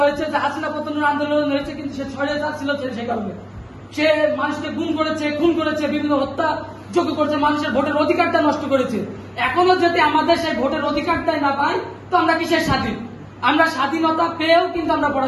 হয়েছে, যে হাসিনা পতনের আন্দোলন হয়েছে, কিন্তু সে স্বৈরাচার ছিল সে কারণে সে মানুষকে গুম করেছে, খুন করেছে, বিভিন্ন হত্যা যোগ্য করেছে, মানুষের ভোটের অধিকারটা নষ্ট করেছে। এখনো যদি আমাদের সেই ভোটের অধিকারটাই না পাই, তো আমরা কিসের স্বাধীন? আমরা স্বাধীনতা পেয়েও কিন্তু আমরা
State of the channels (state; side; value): identical; both; correlation 1.00